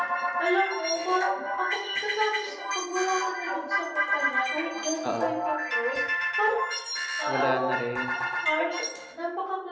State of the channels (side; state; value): both; identical; correlation 1.00